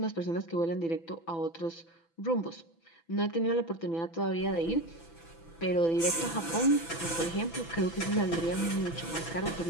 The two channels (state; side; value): late; right; 6.0 ms